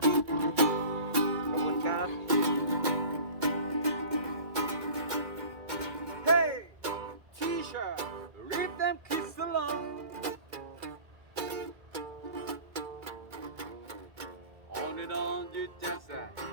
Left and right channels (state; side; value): late; left; 2.2 ms